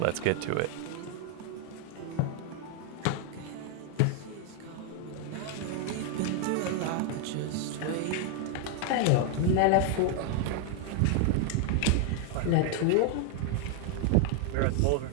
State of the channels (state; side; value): different; both; correlation 0.00